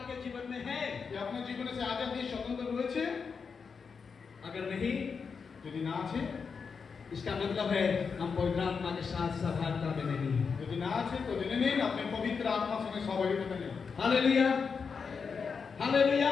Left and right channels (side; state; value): right; quieter; 5.6 dB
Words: जीवन में है? কি আপনার জীবনে সে আজাদি স্বতন্ত্র রয়েছে? अगर नहीं, যদি না আছে, इसका मतलब है हम पवित्र आत्मा के साथ सहभागिता में नहीं हैं। যদি না আছে তো জেনে নিন আপনি পবিত্র আত্মার সঙ্গে সহযোগিতা নেই। Hallelujah,